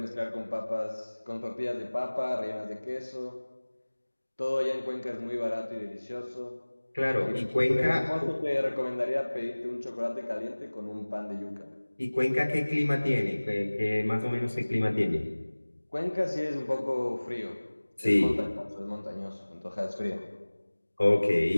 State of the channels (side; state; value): both; inverted; correlation -1.00